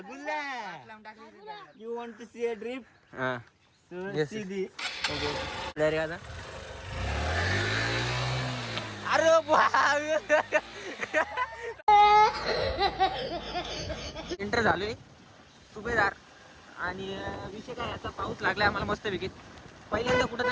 You want to see a drift. हा सो सी दी. रे आता अरे एंटर झालोय सुभेदार. आणि विषय काय, आता पाऊस लागलाय आम्हाला मस्त पैकी. पहिल्यांदा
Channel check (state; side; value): identical; both; correlation 1.00